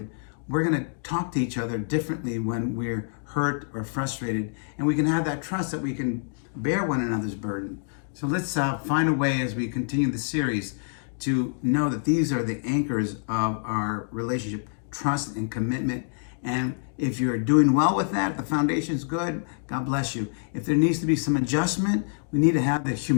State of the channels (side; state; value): right; silent; digital silence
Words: we're going to talk to each other differently when we're hurt or frustrated, and we can have that trust that we can bear one another's burden. So let's find a way as we continue the series to know that these are the anchors of our relationship, trust and commitment. And if you're doing well with that, the foundation's good, God bless you. If there needs to be some adjustment, we need to have the